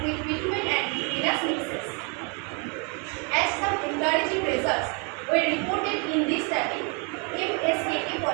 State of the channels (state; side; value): quieter; left; 35.2 dB